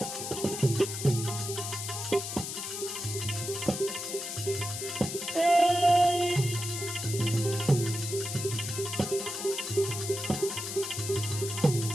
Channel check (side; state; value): left; noise; hiss, 5 dB below the sound